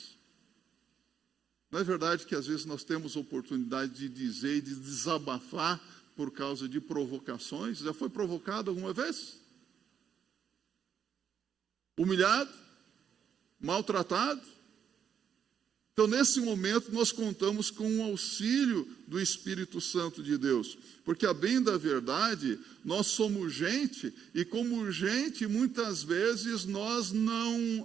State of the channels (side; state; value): left; quieter; 8.0 dB